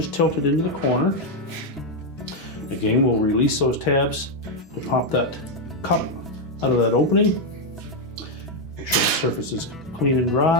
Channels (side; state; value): both; normal; correlation 0.02